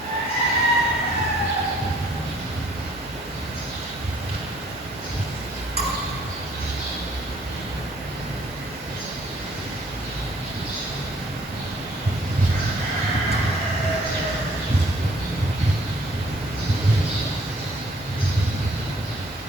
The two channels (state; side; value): normal; both; correlation 0.60